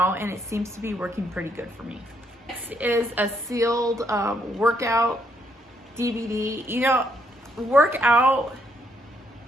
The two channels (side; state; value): both; normal; correlation 0.73